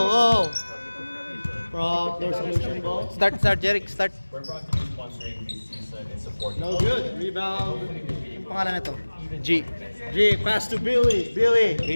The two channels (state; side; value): inverted; both; correlation -1.00